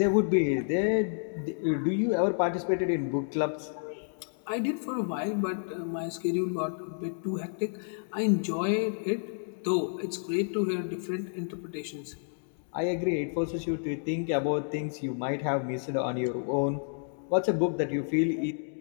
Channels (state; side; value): silent; right; 58 dB below the other